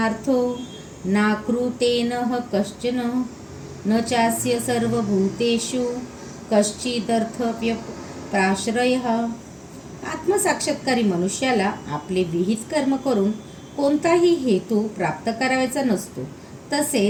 नाकृतेनः कश्चन न चास्य सर्वभूतेषु कश्चिदर्थव्यप्राश्रयः. आत्मसाक्षात्कारी मनुष्याला आपले विहित कर्म करून कोणताही हेतू प्राप्त करायचा नसतो.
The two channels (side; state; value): both; identical; correlation 1.00